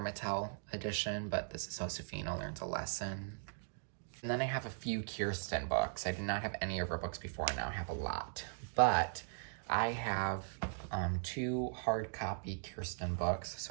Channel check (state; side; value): silent; left; digital silence